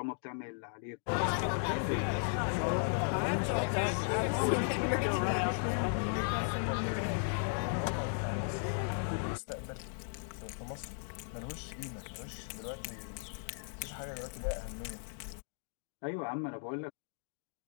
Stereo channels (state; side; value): silent; right; digital silence